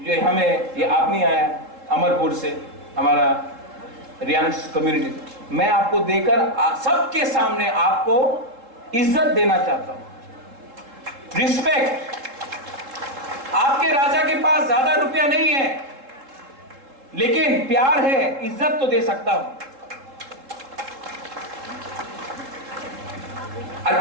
हमें ये आप नहीं आया अमरपुर से, हमारा रियांस कम्युनिटी, मैं आपको देकर सबके सामने आपको इज्जत देना चाहता हूं, रिस्पेक्ट। आपके राजा के पास ज्यादा रुपया नहीं है, लेकिन प्यार है, इज्जत तो दे सकता हूं। আর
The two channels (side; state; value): left; late; 3.7 ms